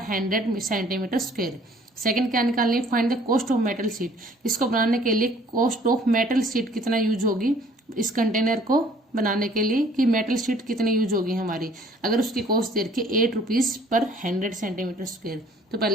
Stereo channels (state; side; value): normal; both; correlation 0.56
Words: 100 centimetre square. Second क्या निकालनी है, find the cost of metal sheet. इसको बनाने के लिए कॉस्ट ऑफ मेटल शीट कितना यूज होगी इस कंटेनर को बनाने के लिए, कि मेटल शीट कितनी यूज होगी हमारी। अगर उसकी कॉस्ट दे रखी है ₹8 पर 100 सेंटीमीटर स्क्वायर, तो